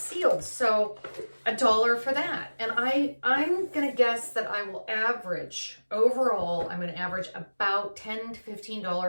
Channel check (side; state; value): both; inverted; correlation -1.00